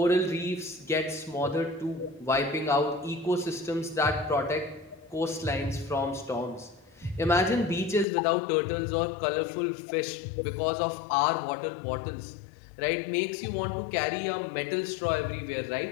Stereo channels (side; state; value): right; drops out; at 8.1 s